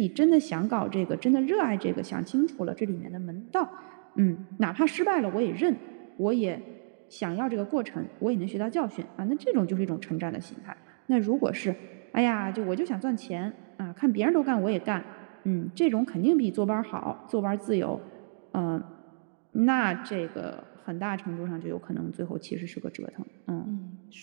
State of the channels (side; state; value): left; silent; digital silence